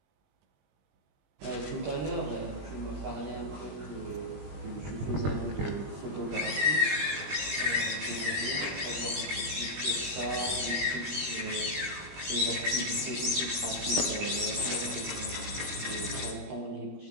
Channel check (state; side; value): late; left; 20 ms